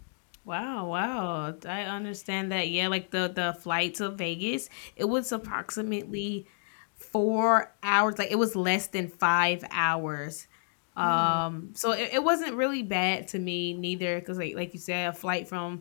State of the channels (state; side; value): silent; right; digital silence